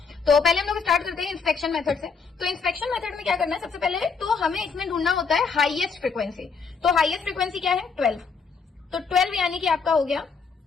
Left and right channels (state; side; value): quieter; right; 5.2 dB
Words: तो पहले हम लोग स्टार्ट करते हैं इंस्पेक्शन मेथड से। तो इंस्पेक्शन मेथड में क्या करना है, सबसे पहले तो हमें इसमें ढूंढना होता है हाईएस्ट फ्रीक्वेंसी। तो हाईएस्ट फ्रीक्वेंसी क्या है, 12। तो 12 यानी कि आपका हो गया